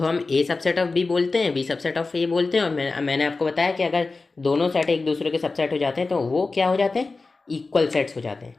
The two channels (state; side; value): quieter; right; 3.8 dB